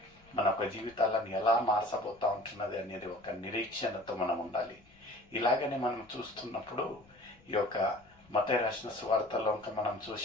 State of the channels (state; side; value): noise; left; rumble, 28 dB below the sound